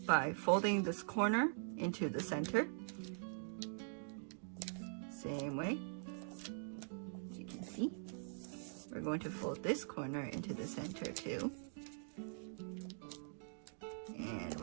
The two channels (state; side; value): silent; left; digital silence